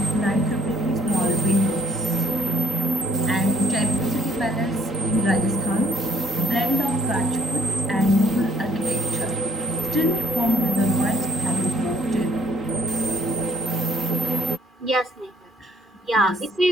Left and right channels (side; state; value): both; normal; correlation 0.62